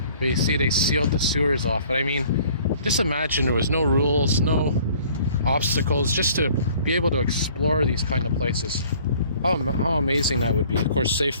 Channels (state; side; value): inverted; both; correlation -0.54